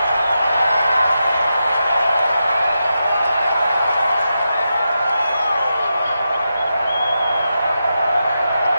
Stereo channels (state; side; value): inverted; both; correlation -0.88